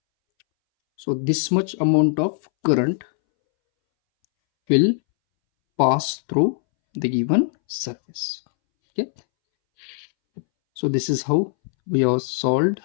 So this much amount of current will pass through the given surface. Okay. So this is how we have solved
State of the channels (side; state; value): right; silent; 64 dB below the other